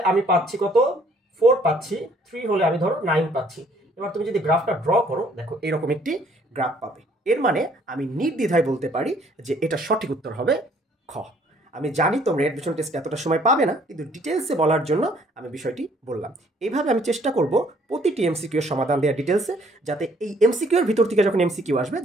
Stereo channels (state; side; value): normal; both; correlation 0.62